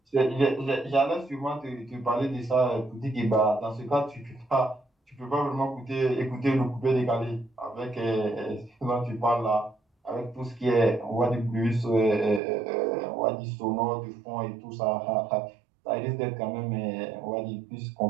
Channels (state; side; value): drops out; left; at 12.4 s